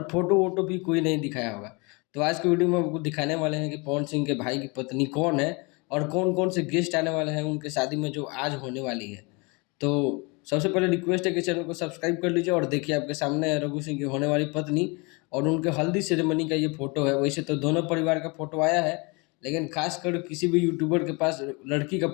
फोटो वोटो भी कोई नहीं दिखाया होगा। तो आज की वीडियो में आपको दिखाने वाले हैं कि पवन सिंह के भाई की पत्नी कौन है और कौन कौन से गेस्ट आने वाले हैं उनके शादी में जो आज होने वाली है। तो सबसे पहले रिक्वेस्ट है कि चैनल को सब्सक्राइब कर लीजिए और देखिए आपके सामने है रघु सिंह की होने वाली पत्नी और उनके हल्दी सेरेमनी का ये फोटो है। वैसे तो दोनों परिवार का फोटो आया है लेकिन खासकर किसी भी यूट्यूबर के पास लड़की का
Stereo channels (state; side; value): quieter; right; 29.2 dB